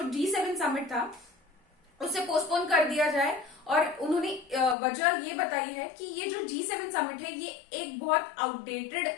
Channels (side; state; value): right; drops out; at 4.8 s